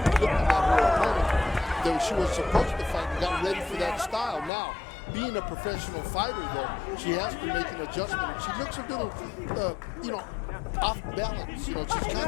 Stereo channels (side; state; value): right; drops out; at 4.5 s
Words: opponent that she was supposed to fight and got ready for that style. Now, being a professional fighter, though, she has to make an adjustment. And she looks a little, off balance. You know, she's